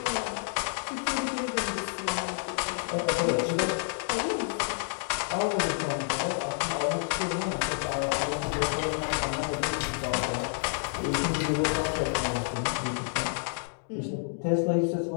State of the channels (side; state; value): right; silent; digital silence